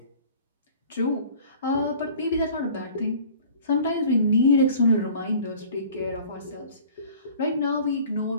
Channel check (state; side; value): inverted; both; correlation -0.47